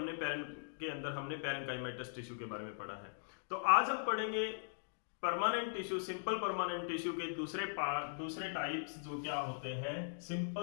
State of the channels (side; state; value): right; silent; digital silence